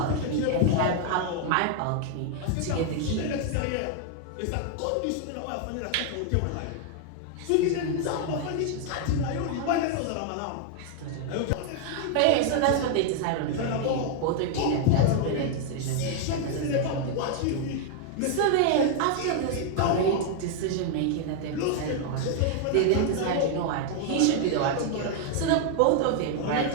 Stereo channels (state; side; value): different; both; correlation 0.00